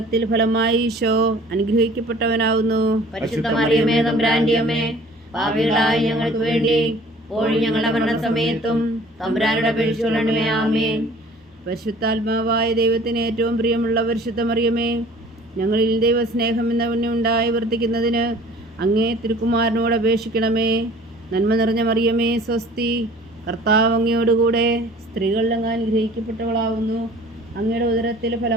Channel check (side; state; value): both; normal; correlation 0.49